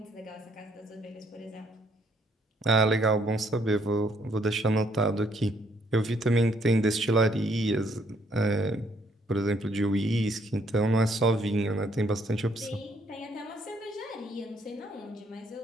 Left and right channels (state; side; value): normal; both; correlation 0.68